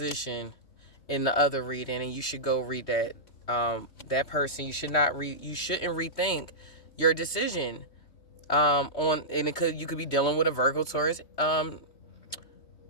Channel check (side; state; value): right; late; 3.2 ms